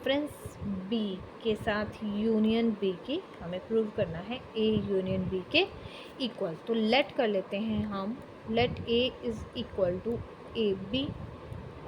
B के साथ यूनियन B की हमें प्रूव करना है A यूनियन B के इक्वल. तो लेट कर लेते हैं हम, let A is equal to A B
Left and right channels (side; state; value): both; identical; correlation 1.00